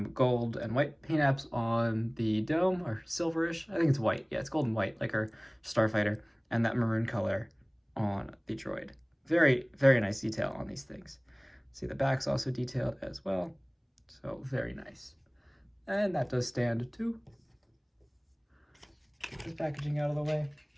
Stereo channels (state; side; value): identical; both; correlation 1.00